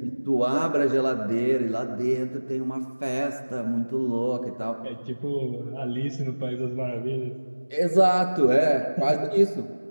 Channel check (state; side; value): inverted; both; correlation -1.00